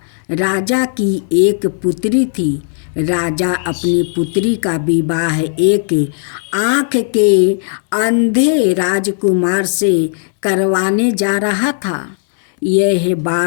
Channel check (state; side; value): silent; right; digital silence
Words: राजा की एक पुत्री थी। राजा अपनी पुत्री का विवाह एक आँख के अंधे राजकुमार से करवाने जा रहा था। यह